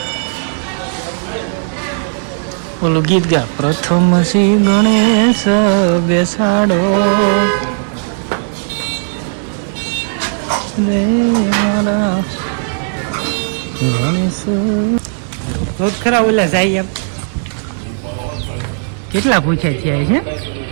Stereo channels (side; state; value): left; silent; digital silence